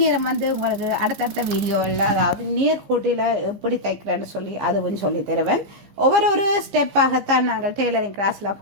நேரம் வந்து உங்களுக்கு அடுத்தடுத்த வீடியோவில் அதாவது நேர்கோட்டில் எப்படி தைக்கிறேன்னு சொல்லி அதுவும் சொல்லி தருவேன். ஒவ்வொரு ஸ்டெப்பாகத்தான் நாங்கள் டெய்லரிங் கிளாஸில்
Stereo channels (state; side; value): late; left; 15 ms